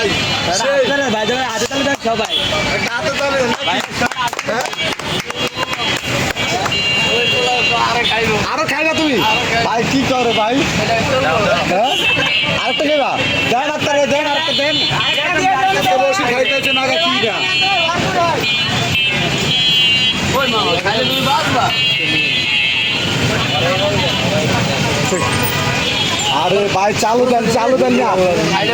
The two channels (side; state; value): both; identical; correlation 1.00